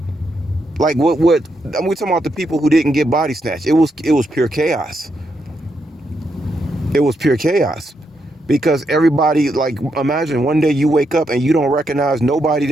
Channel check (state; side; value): normal; both; correlation 0.81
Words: like, we're talking about the people who didn't get body snatched. It was pure chaos. It was pure chaos. Because everybody, like, imagine one day you wake up and you don't recognize nobody